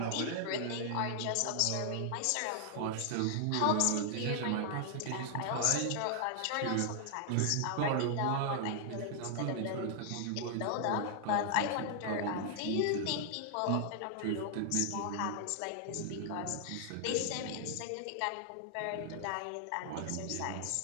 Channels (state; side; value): different; both; correlation 0.00